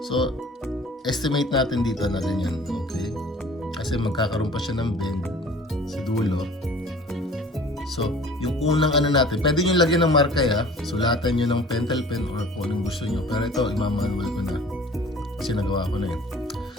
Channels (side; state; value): both; normal; correlation 0.47